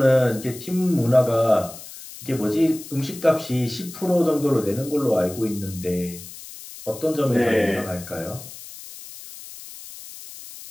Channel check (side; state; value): left; noise; hiss, 15 dB below the sound